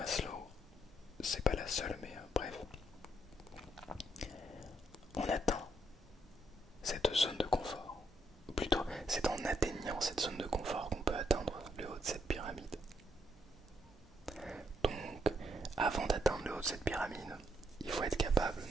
c'est pas la seule, mais bref, on atteint cette zone de confort. Ou plutôt, c'est en atteignant cette zone de confort qu'on peut atteindre le haut de cette pyramide. Donc, avant d'atteindre le haut de cette pyramide, il faut être capable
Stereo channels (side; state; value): both; normal; correlation 0.75